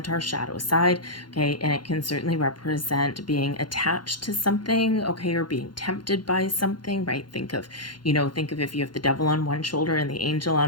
our shadow side, okay? And it can certainly represent being attached to something, okay, or being tempted by something, right? Think of if you have the devil on one shoulder and the angel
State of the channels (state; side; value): late; right; 0.71 ms